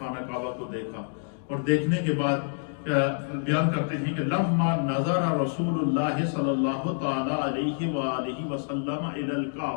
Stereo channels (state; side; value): silent; right; digital silence